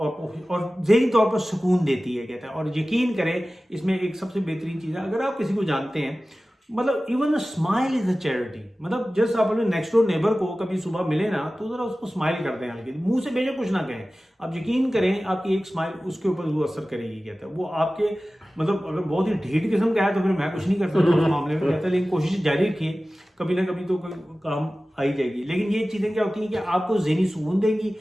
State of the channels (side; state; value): both; normal; correlation 0.96